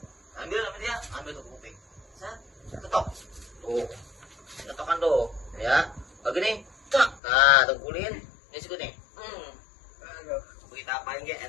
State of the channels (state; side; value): drops out; right; at 7.2 s